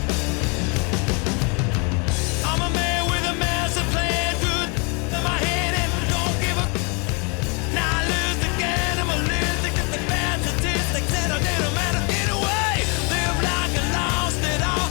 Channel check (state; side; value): quieter; right; 33.0 dB